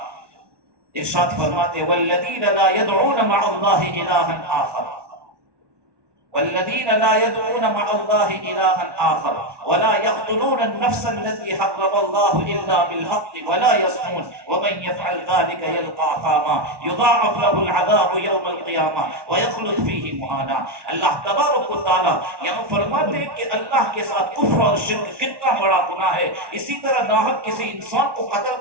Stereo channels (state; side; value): late; left; 1.1 ms